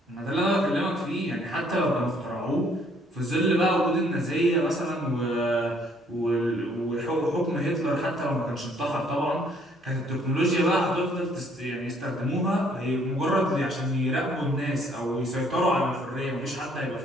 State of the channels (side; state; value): both; normal; correlation 0.64